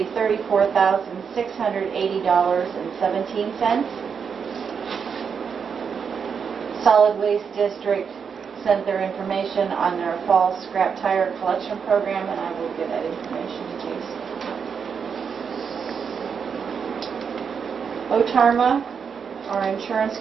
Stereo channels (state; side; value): quieter; left; 6.5 dB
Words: $34,680.17. Solid Waste District sent their information on their fall scrap tire collection program, and I will give that information to Jason. Otarma, our insurance